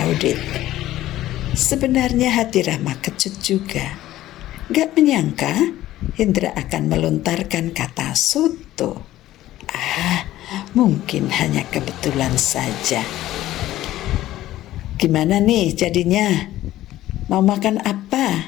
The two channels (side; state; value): right; quieter; 14.6 dB